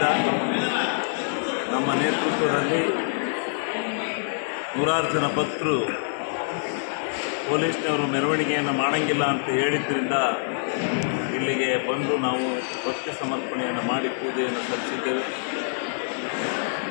ನಮ್ಮ ನೇತೃತ್ವದಲ್ಲಿ ನೂರಾರು ಜನ ಭಕ್ತರು ಪೊಲೀಸ್ನವರು ಮೆರವಣಿಗೆಯನ್ನು ಮಾಡೋಂಗಿಲ್ಲ ಅಂತ ಹೇಳಿದ್ದರಿಂದ ಇಲ್ಲಿಗೆ ಬಂದು ನಾವು ಭಕ್ತಿ ಸಮರ್ಪಣೆಯನ್ನು ಮಾಡಿ ಪೂಜೆಯನ್ನು ಸಲ್ಲಿಸಿದ್ದೇವೆ.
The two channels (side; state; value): right; silent; digital silence